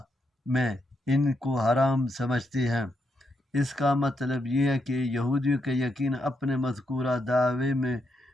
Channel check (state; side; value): normal; both; correlation 0.81